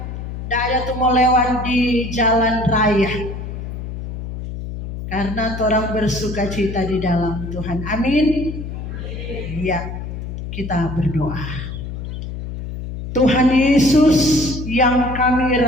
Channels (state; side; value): noise; left; hum, 7 dB below the sound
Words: Daya tuh mau lewat di jalan raya. Karena orang bersuka cita di dalam Tuhan. Amin. Ya, kita berdoa. Tuhan Yesus yang kami